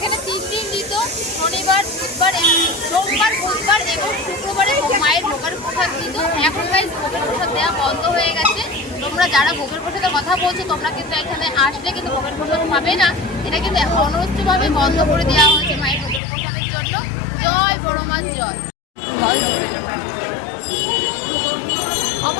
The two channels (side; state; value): right; drops out; at 16.2 s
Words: 3 দিন দিত, শনিবার, সোমবার, বুধবার এবং শুক্রবারে মায়ের ভোগের প্রসাদ দিত। এখন গাইস ভোগের প্রসাদ দেওয়া বন্ধ হয়ে গেছে। তোমরা যারা ভোগের প্রসাদের কথা বলছো তোমরা কিন্তু এখানে আসলে কিন্তু ভোগের প্রসাদ পাবে না। এটা কিন্তু অনবরতভাবে বন্ধ করে দেওয়া হয়েছে মায়ের ভোগের প্রসাদের জন্য। জয় বড়মার জয়।